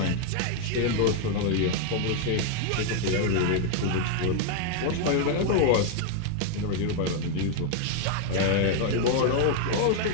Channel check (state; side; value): different; both; correlation 0.00